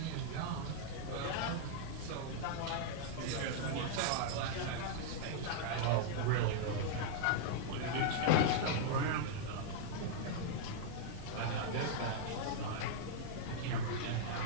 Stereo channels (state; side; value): different; both; correlation -0.01